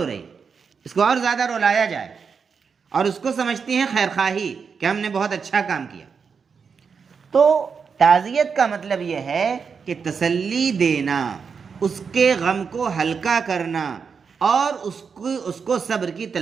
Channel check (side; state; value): left; quieter; 5.9 dB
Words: رہی, اس کو اور زیادہ رلایا جائے, اور اس کو سمجھتی ہیں خیر خواہی کہ ہم نے بہت اچھا کام کیا. تو تعزیت کا مطلب یہ ہے کہ تسلی دینا, اس کے غم کو ہلکا کرنا اور اس کو صبر کی